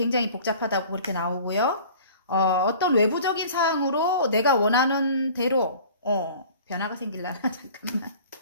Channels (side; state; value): both; inverted; correlation -0.45